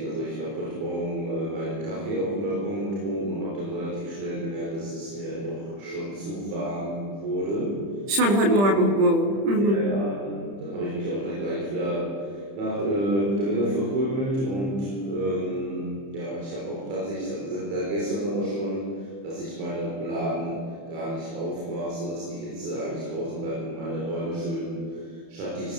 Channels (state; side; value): late; left; 30 ms